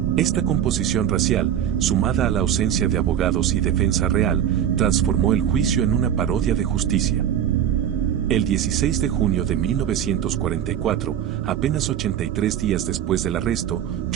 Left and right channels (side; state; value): left; quieter; 9.9 dB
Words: Esta composición racial, sumada a la ausencia de abogados y defensa real, transformó el juicio en una parodia de justicia. El 16 de junio de 1944, apenas 83 días después del arresto,